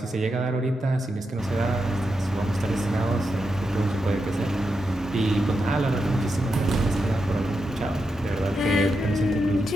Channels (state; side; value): normal; both; correlation 0.86